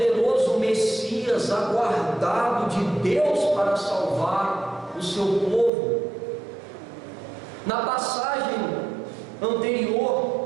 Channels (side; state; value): left; drops out; at 5.7 s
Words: Messias aguardado de Deus para salvar o seu povo. Na passagem